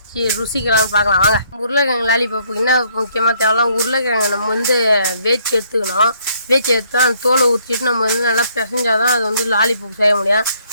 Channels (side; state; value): both; inverted; correlation -0.67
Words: ருசிக்கலாம்னு பார்க்கலாம். வாங்க. உருளைக்கிழங்கு லாலிபாப்புக்கு என்ன முக்கியமாக தேவைலாம், உருளைக்கிழங்கு நம்ம வந்து வேச்சு எடுத்துக்கணும். வேச்சு எடுத்து அந்த தோலை ஊற்றிட்டு நம்ம வந்து நல்லா பிசைஞ்சால் தான் அது வந்து லாலிபாப் செய்ய முடியும்.